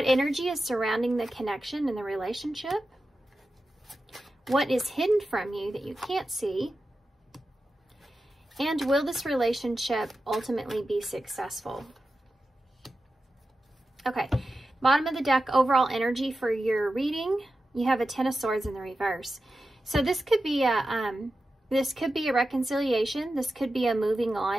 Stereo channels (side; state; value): both; normal; correlation 0.92